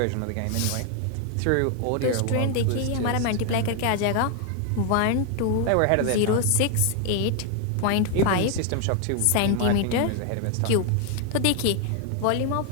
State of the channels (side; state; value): both; different; correlation 0.00